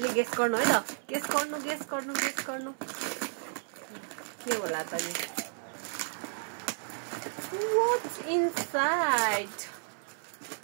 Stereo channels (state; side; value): silent; left; 56 dB below the other